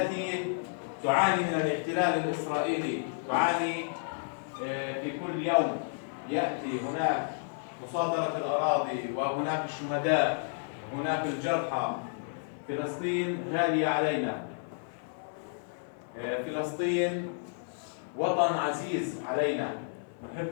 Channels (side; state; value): right; silent; 57 dB below the other